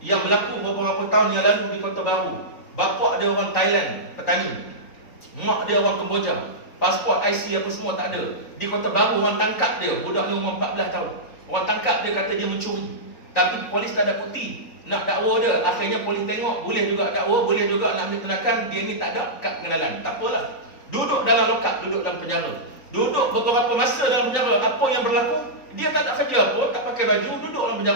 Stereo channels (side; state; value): right; late; 3.9 ms